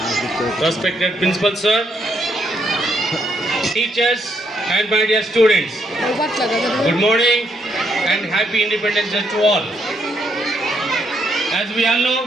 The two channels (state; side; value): normal; both; correlation 0.75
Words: respected Principal Sir, teachers and my dear students, good morning and happy Independence Day to all. As we all know,